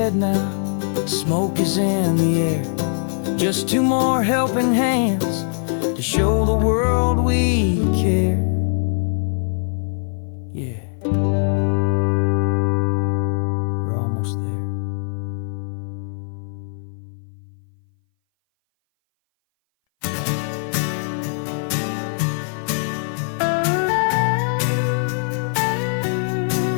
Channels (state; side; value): silent; right; 59 dB below the other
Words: now, smoke is in the air. Just two more helping hands to show the world we care. Yeah. We're almost there.